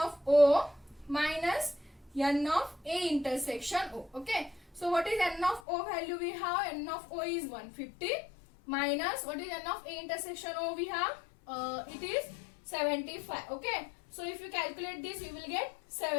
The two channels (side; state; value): right; drops out; at 5.6 s